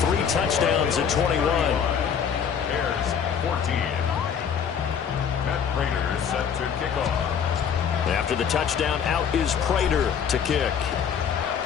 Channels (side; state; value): right; quieter; 7.5 dB